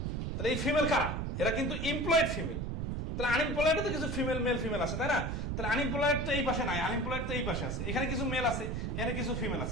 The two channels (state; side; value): noise; right; rumble, 2 dB below the sound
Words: তাহলে এই ফিমেল কারা? এরা কিন্তু এমপ্লয়েড ফিমেল। তাহলে আনএমপ্লয়েড তো কিছু ফিমেল মেল ফিমেল আছে, তাই না? তাহলে আনএমপ্লয়েড তো এই পাশে নাই, আনএমপ্লয়েড তো এই পাশে আছে। এখানে কিছু মেল আছে, এখানে কিছু ফিমেল